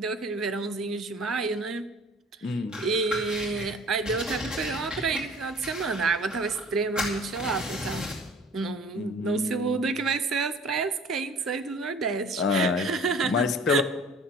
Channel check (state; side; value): normal; both; correlation 0.48